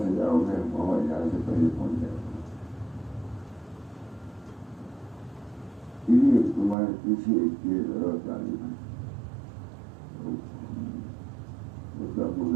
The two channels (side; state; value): left; drops out; at 6.8 s